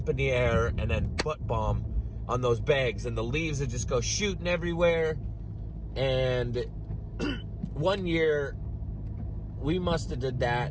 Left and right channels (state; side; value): identical; both; correlation 1.00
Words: in the air and then butt bomb on those bags, and the leaves would just go shooting everywhere. And one year we must have did